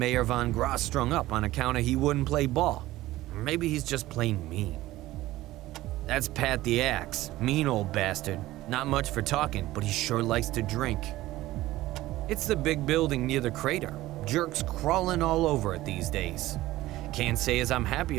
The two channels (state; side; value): quieter; left; 16.6 dB